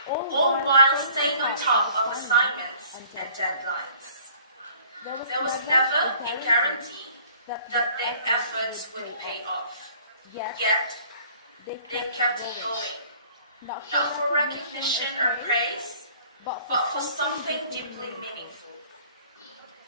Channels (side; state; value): both; inverted; correlation -0.53